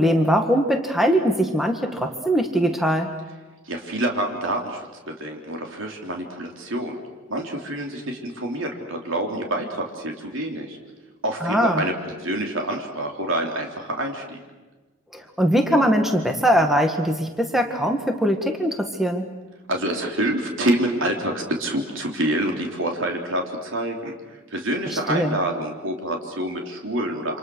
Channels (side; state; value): both; normal; correlation 0.53